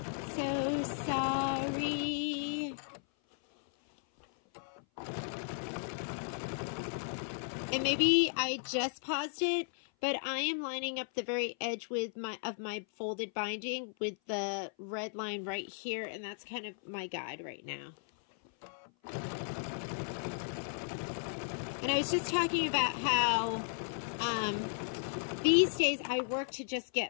So sorry. And maybe I just paused it, but I am lining up the very edge with my folded binding with the red line right here, and that's kind of my guide right now. And I was just talking about how these days I work to just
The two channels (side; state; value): right; silent; 54 dB below the other